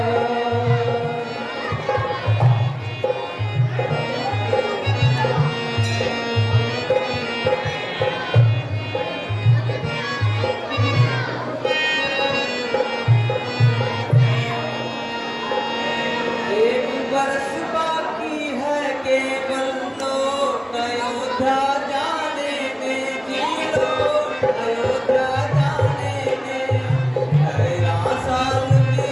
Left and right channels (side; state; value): both; identical; correlation 1.00